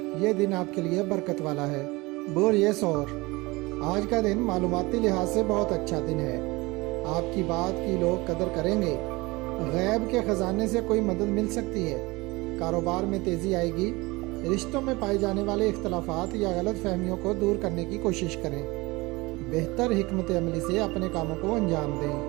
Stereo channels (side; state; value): left; quieter; 23.0 dB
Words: ये दिन आपके लिए बरकत वाला है। बोर ये सौर। आज का दिन मालूमाती लिहाज से बहुत अच्छा दिन है। आपकी बात की लोग कदर करेंगे। गैब के ख़जाने से कोई मदद मिल सकती है। कारोबार में तेज़ी आएगी। रिश्तों में पाए जाने वाले इख्तलाफात या गलत फहमियों को दूर करने की कोशिश करें। बेहतर हिकमत अमली से अपने कामों को अंजाम